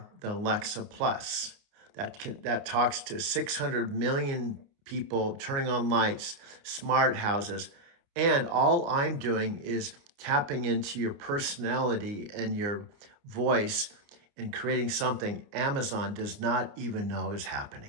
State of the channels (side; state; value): left; late; 29 ms